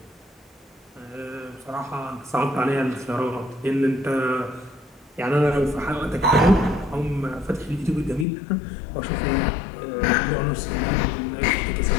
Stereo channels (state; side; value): drops out; right; at 8.2 s